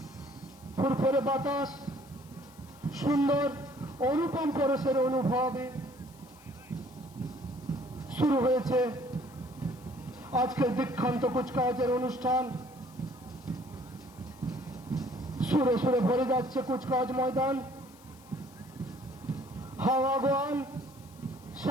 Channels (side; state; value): left; noise; hiss, 25 dB below the sound